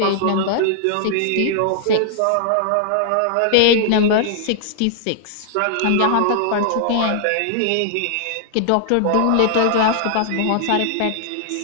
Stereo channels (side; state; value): both; different; correlation -0.01